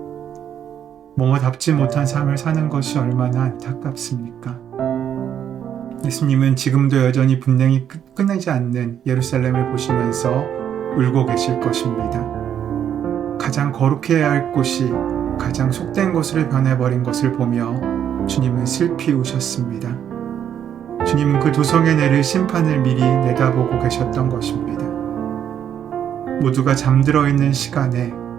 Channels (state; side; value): quieter; left; 9.3 dB